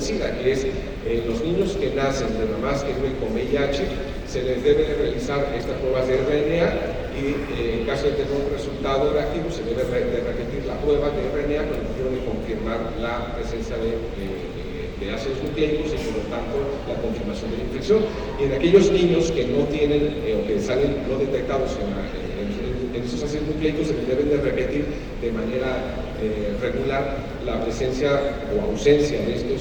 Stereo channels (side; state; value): both; identical; correlation 1.00